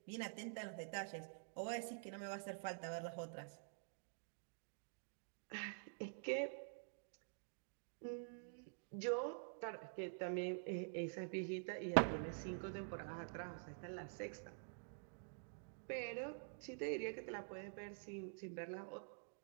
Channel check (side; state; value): left; silent; digital silence